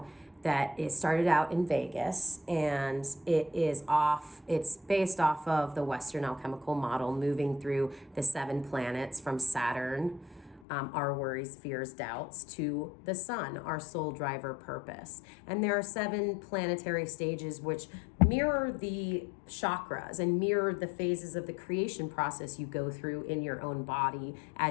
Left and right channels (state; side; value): drops out; right; at 10.6 s